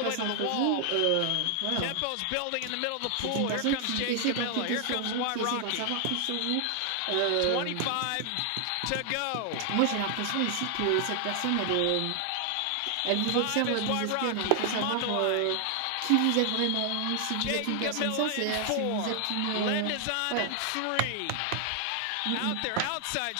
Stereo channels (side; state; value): both; different; correlation 0.00